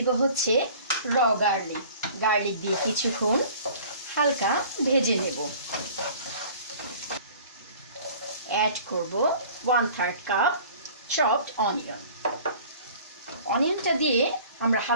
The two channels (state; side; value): inverted; both; correlation -0.47